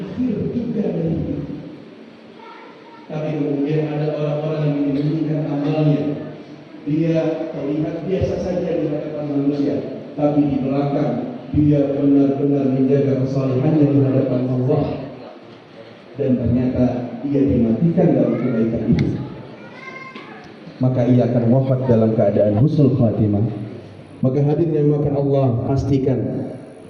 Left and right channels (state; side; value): identical; both; correlation 1.00